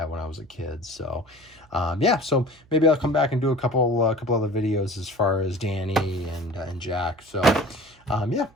when I was a kid. So yeah, so maybe I'll come back and do a couple other videos as far as Danny and Jack. So yeah,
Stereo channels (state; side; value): noise; right; hum, 29 dB below the sound